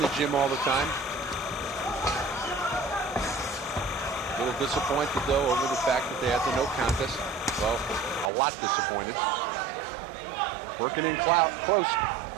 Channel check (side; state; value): left; drops out; at 8.3 s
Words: gym all the time. A little disappointed, though, over the fact that they had the no contest. Well, a lot disappointed. Working in close.